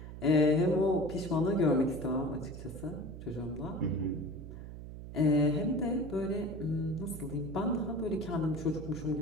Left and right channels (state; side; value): noise; right; hum, 11 dB below the sound